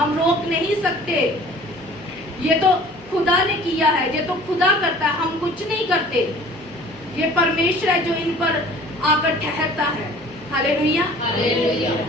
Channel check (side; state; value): both; normal; correlation 0.48